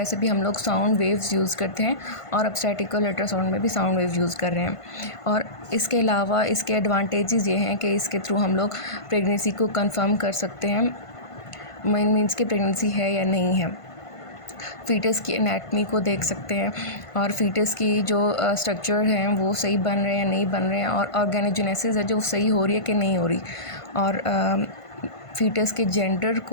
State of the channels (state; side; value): late; right; 1.5 ms